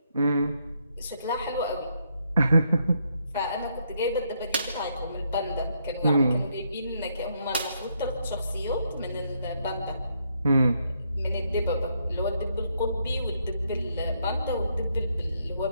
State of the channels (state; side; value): inverted; both; correlation -0.75